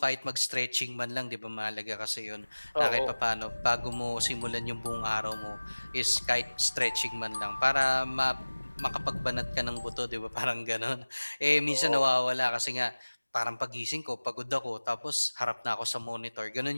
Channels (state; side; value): inverted; both; correlation -1.00